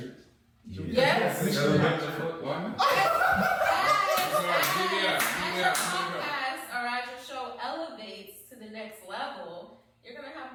Yes. Why not? Podcast or as your show elevates to the next level, you're gonna have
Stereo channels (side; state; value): both; identical; correlation 1.00